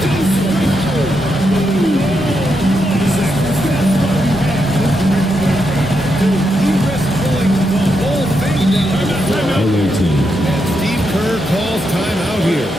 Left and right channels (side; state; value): both; normal; correlation 0.83